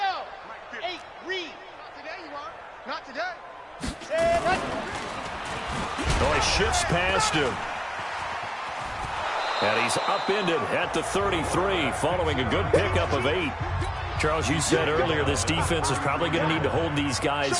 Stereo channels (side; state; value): both; identical; correlation 1.00